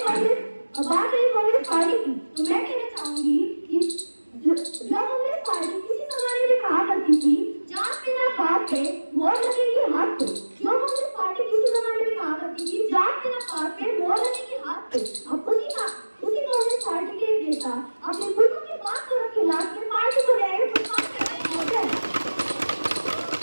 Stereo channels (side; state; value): both; inverted; correlation -1.00